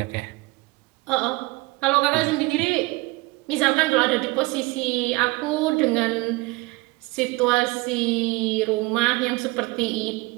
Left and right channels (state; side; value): quieter; left; 23.5 dB